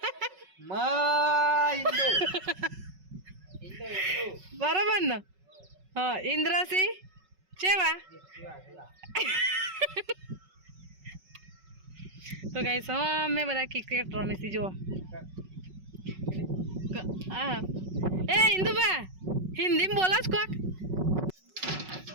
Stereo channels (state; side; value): late; left; 5.4 ms